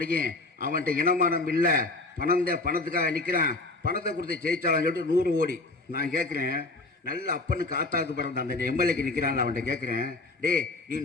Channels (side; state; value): right; quieter; 3.1 dB